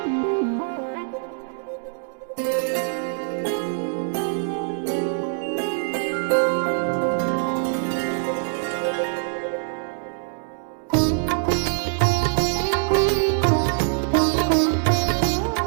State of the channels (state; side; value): silent; left; digital silence